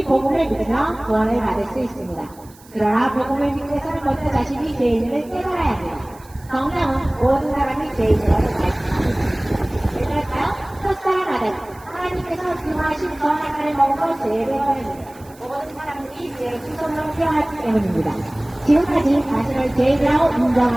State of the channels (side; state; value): right; noise; hiss, 25 dB below the sound